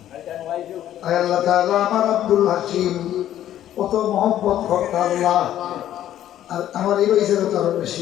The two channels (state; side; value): quieter; right; 11.9 dB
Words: আল্লাহ তাআলা আমার আব্দুল হাসিম কত মহব্বত করতে আল্লাহ আর আমার এই বয়সের কারণ